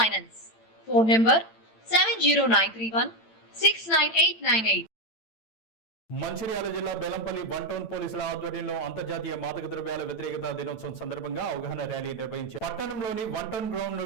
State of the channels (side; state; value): right; late; 8.9 ms